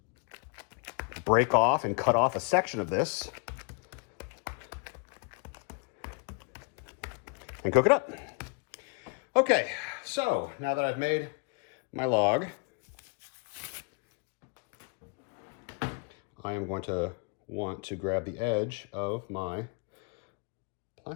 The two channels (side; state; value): right; quieter; 36.2 dB